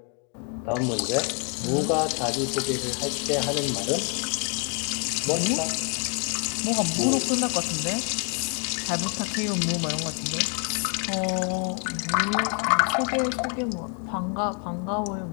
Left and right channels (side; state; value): right; quieter; 38.9 dB